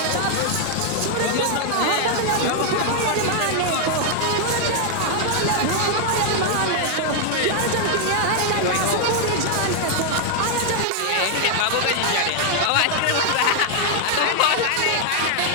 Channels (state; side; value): different; both; correlation 0.00